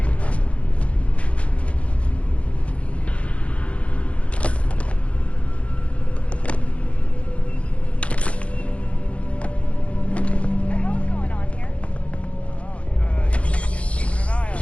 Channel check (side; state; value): right; late; 0.063 ms